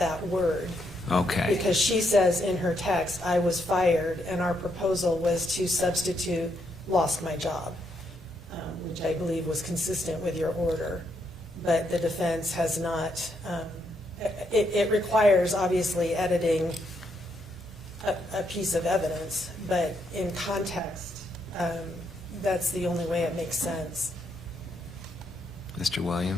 word. Okay, Because she says in her text, I was fired, and our proposal was to substitute lost my job, which I believe was consistent with your order. But the defense has not, it requires obviously editing a piece of evidence, but in context, that's the only way it makes sense. Mr.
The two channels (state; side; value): normal; both; correlation 0.77